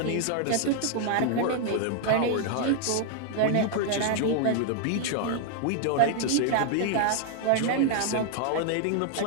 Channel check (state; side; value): different; both; correlation 0.00